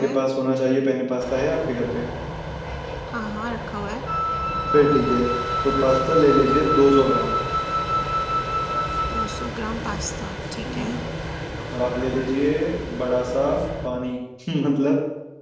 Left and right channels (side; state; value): both; identical; correlation 1.00